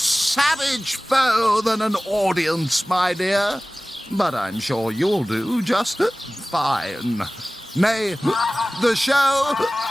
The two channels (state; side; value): normal; both; correlation 0.97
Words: foe than an audience, my dear. But I'm sure you'll do just fine. May the show